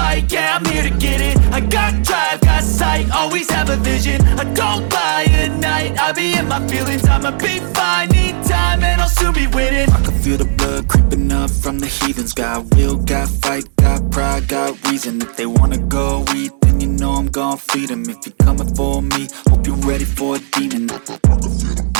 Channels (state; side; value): silent; left; digital silence